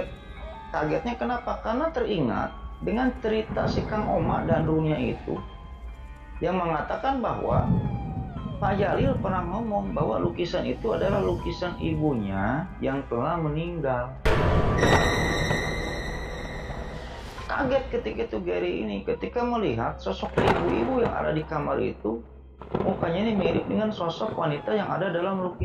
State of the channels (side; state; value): both; identical; correlation 1.00